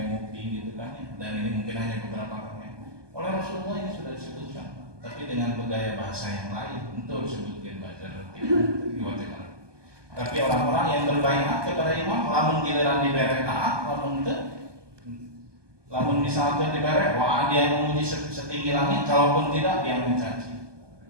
gitu kan. Dan ini mungkin hanya beberapa kali. Oleh Rasulullah ini sudah disebutkan, tapi dengan bergaya bahasa yang lain untuk disebutkan bajar. Tapi orang-orang yang berbaiat kepada imam, lamun giliran dibere taat, lamun misalkan dibere, wah dia memuji setinggi langit, kalaupun tidak dia mencaci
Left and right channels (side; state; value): left; late; 1.2 ms